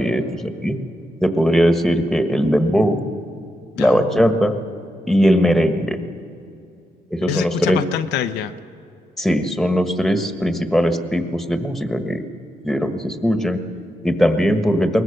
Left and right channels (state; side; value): normal; both; correlation 0.86